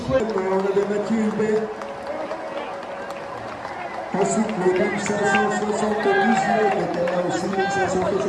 On avait Mathieu Hubert. Ensuite, le 1579 était là aussi,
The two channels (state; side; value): identical; both; correlation 1.00